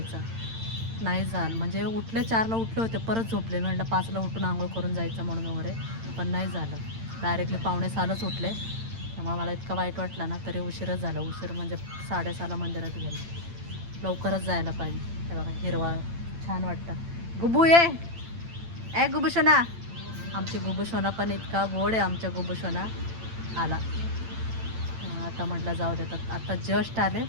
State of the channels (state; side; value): late; left; 8.9 ms